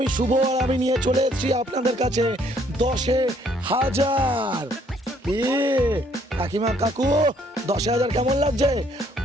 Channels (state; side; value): normal; both; correlation 0.65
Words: শুভ আর আমি নিয়ে চলে এসেছি আপনাদের কাছে 10,000। কাকিমা কাকু 10,000 কেমন লাগছে?